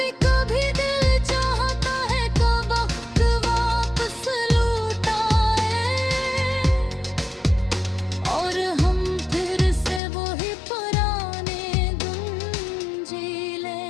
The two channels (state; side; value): drops out; right; at 10.0 s